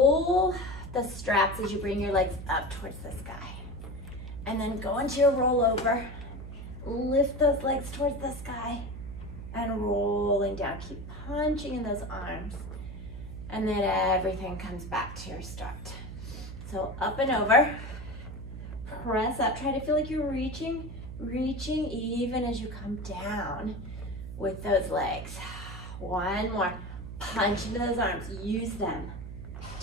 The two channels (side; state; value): right; noise; hum, 10 dB below the sound